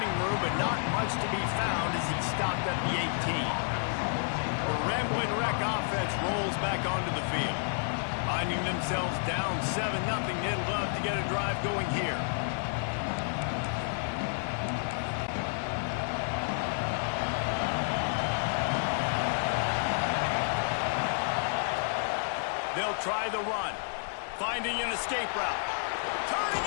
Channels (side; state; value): right; silent; digital silence